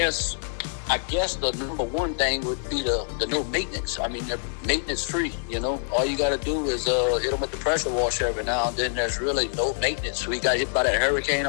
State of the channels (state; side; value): silent; right; 61 dB below the other